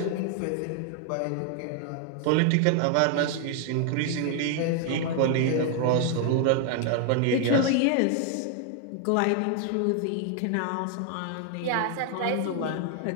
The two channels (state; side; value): different; both; correlation 0.00